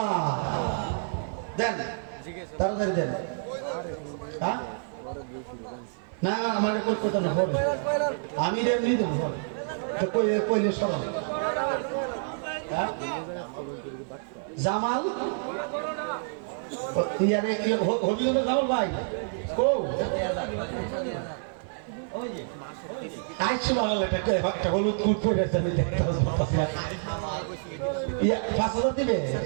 দেন তাড়াতাড়ি দেন হ্যাঁ না আমার কথা না বলে আমি এমনি দেবো কইলে সরল হ্যাঁ? জামাল ইয়ারে হবিগঞ্জ জামাল ভাই কো আইসো বানালে একটা হলুদ কুট পরে আছে আমি দেখতে পাচ্ছি না। 5,000 দিবে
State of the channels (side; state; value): left; silent; 57 dB below the other